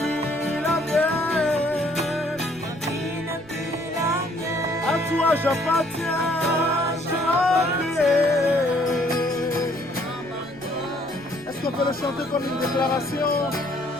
la mienne. À toi j'appartiens. Est-ce qu'on peut le chanter comme une déclaration?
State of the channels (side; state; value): right; noise; rumble, 25 dB below the sound